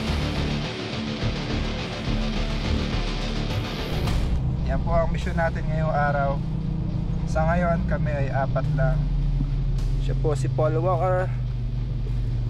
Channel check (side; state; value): both; identical; correlation 1.00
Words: Yan po ang mission natin ngayong araw. Sa ngayon kami ay 4 lang. Siya po si Paul Walker,